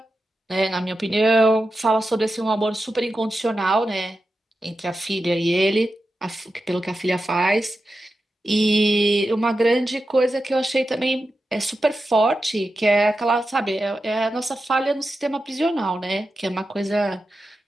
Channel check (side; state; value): both; normal; correlation 0.91